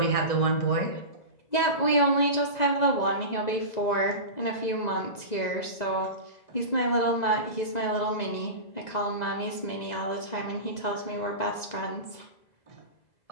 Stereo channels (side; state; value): right; late; 2.0 ms